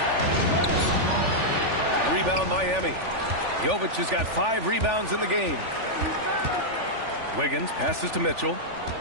Rebound Miami. Jovic has got 5 rebounds in the game. Wiggins passes to Mitchell.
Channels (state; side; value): late; left; 3.4 ms